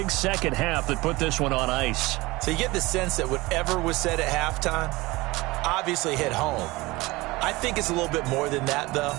second half that put this one on ice. So you get the sense that whatever was said at halftime obviously hit home. I think it's a little bit more than that, though.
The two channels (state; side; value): quieter; left; 21.5 dB